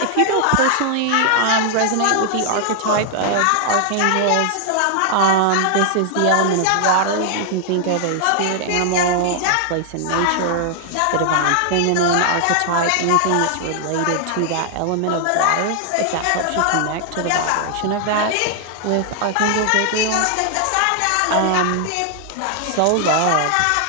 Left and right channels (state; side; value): different; both; correlation 0.00